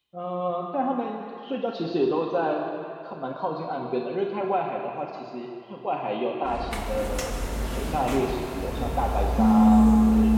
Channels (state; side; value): identical; both; correlation 1.00